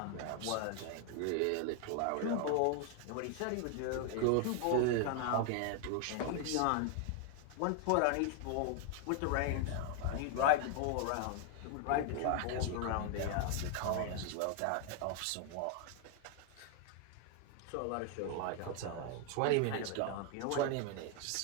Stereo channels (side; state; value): both; different; correlation 0.00